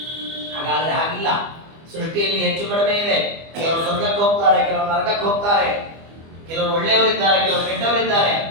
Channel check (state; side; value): late; left; 25 ms